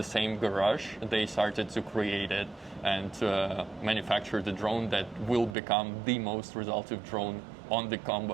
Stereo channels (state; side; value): drops out; left; at 5.6 s